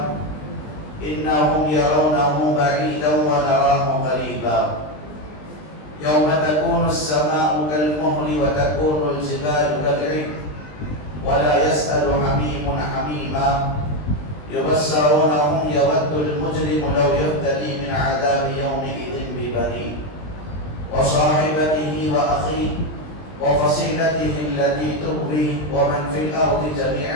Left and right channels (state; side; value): late; right; 20 ms